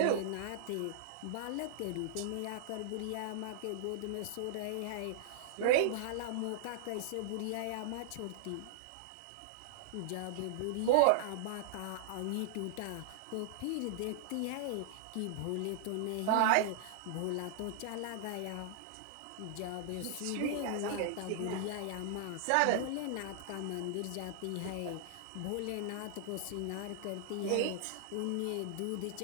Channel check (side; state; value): both; different; correlation -0.01